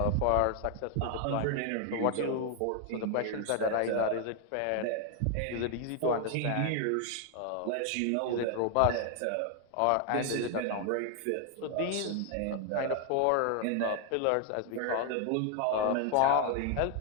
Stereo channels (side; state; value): both; different; correlation 0.00